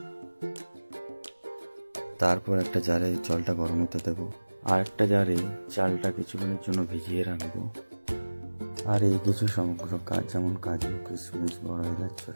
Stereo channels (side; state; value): both; inverted; correlation -1.00